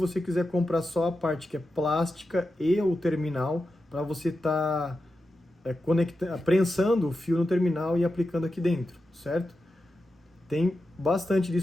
quiser comprar só a parte que é plástica e o terminal, para você estar prensando o fio no terminal e aplicando aqui dentro, certo? Tem bastante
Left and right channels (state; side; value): normal; both; correlation 0.90